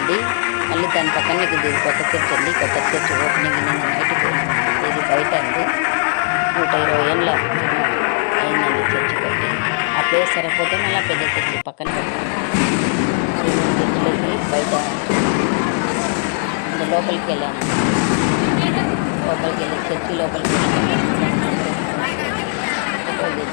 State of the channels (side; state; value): right; silent; 67 dB below the other